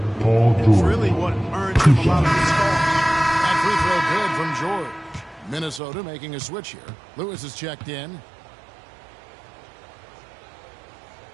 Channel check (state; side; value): drops out; left; at 5.8 s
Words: Paul It's George. really what earns him a lot of his calls. That free throw good from George. Minnesota making a switch here. Lewis is checked in.